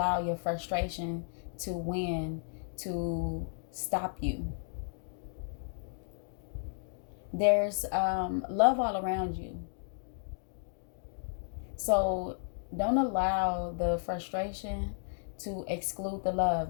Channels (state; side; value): silent; right; digital silence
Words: your frustration to win, to stop you. There's love all around you. So don't allow the frustration to exclude the